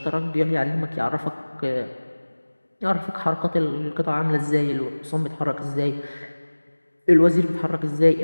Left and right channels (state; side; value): inverted; both; correlation -1.00